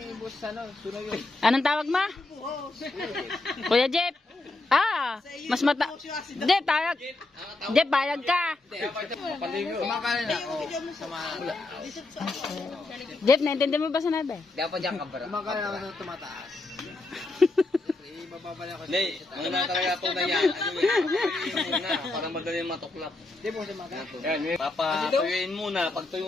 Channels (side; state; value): right; quieter; 3.1 dB